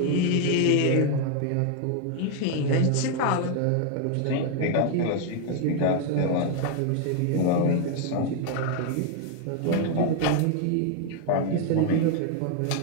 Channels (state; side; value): different; both; correlation 0.00